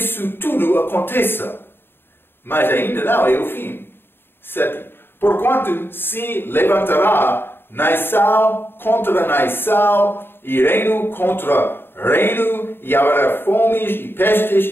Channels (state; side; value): late; right; 0.10 ms